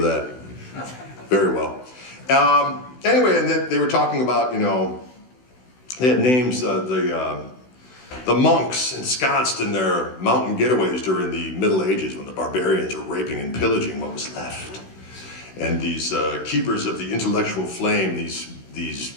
very well. Anyway, and they were talking about, you know, they had names, the monks ensconced in their mountain getaways during the Middle Ages when the barbarians were raping and pillaging what was left. And these keepers of the intellectual flame, these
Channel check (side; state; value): right; late; 16 ms